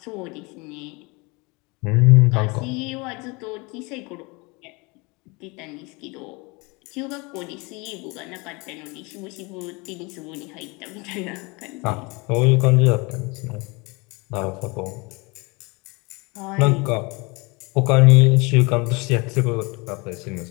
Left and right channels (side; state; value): right; quieter; 27.4 dB